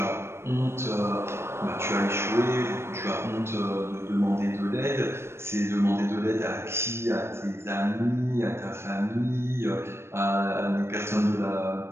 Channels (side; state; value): left; late; 0.12 ms